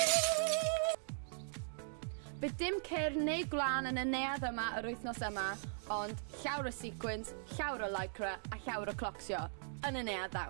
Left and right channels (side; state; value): left; silent; digital silence